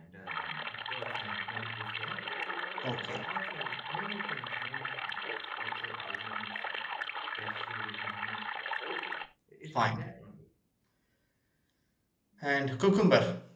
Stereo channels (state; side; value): identical; both; correlation 1.00